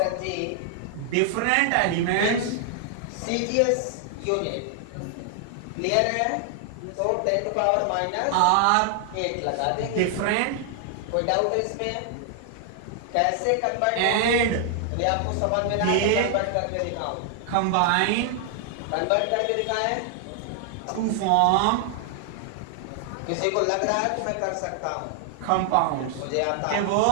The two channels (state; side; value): different; both; correlation 0.00